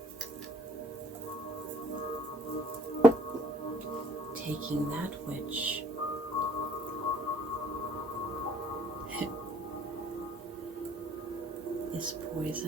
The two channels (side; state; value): both; normal; correlation 0.60